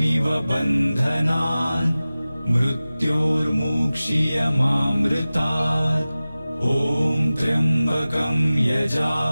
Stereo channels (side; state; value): both; inverted; correlation -0.97